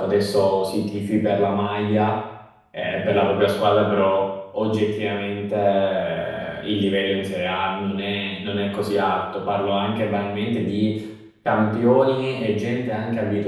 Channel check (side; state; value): both; identical; correlation 1.00